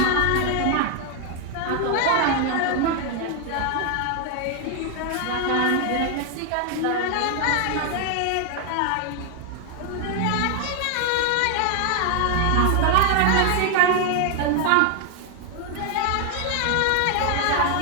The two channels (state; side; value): different; both; correlation 0.01